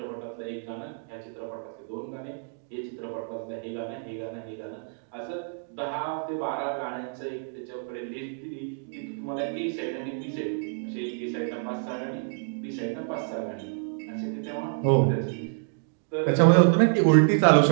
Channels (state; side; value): silent; left; digital silence